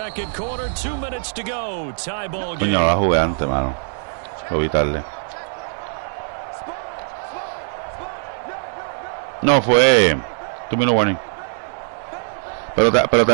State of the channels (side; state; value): left; silent; 63 dB below the other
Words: quarter, 2 minutes to go. Tie ball game. Coño, la jugué antes, mano. Lo vi tarde. No, fue 2 minute warning. Pero